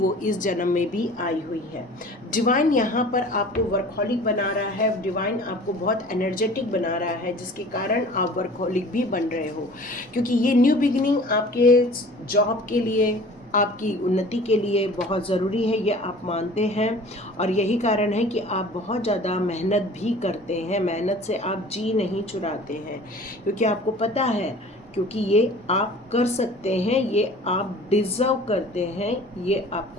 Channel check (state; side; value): normal; both; correlation 0.45